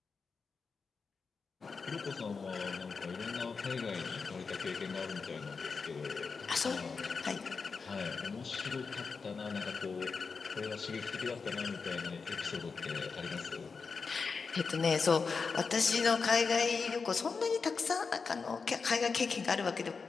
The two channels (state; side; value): quieter; right; 5.0 dB